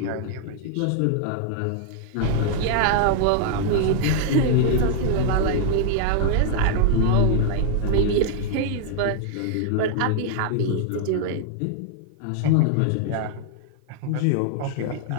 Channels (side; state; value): both; different; correlation 0.00